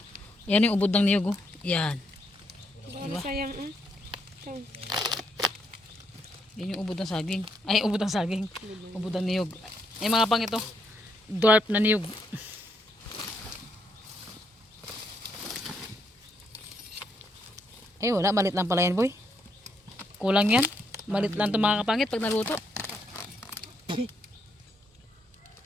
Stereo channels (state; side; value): normal; both; correlation 0.76